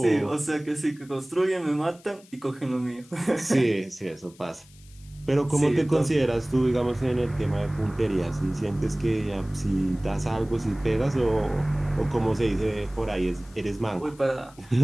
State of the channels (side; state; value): left; noise; hiss, 26 dB below the sound